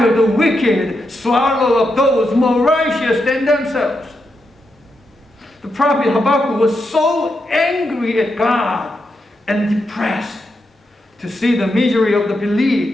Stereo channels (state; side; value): normal; both; correlation 0.84